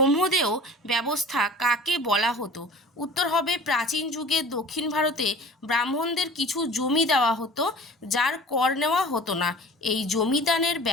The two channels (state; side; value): normal; both; correlation 0.42